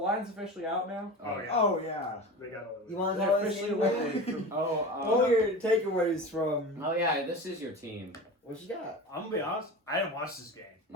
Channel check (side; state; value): both; normal; correlation 0.31